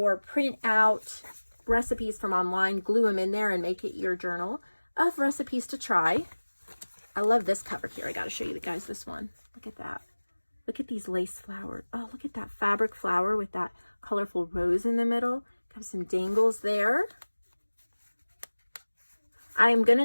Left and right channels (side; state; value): both; inverted; correlation -1.00